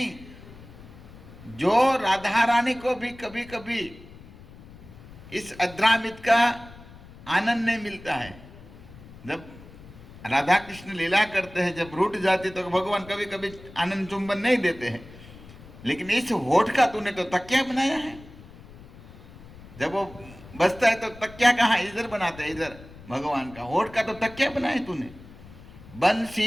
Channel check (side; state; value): left; noise; rumble, 19 dB below the sound